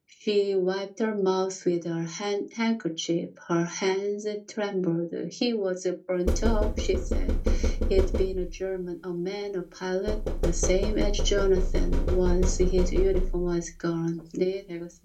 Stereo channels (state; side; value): identical; both; correlation 1.00